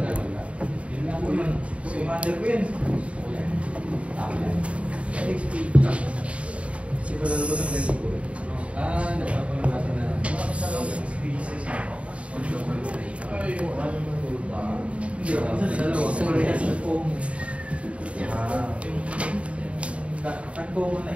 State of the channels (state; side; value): late; left; 0.063 ms